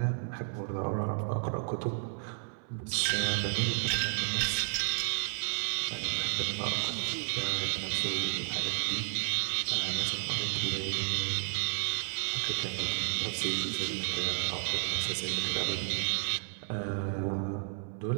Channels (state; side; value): silent; left; 56 dB below the other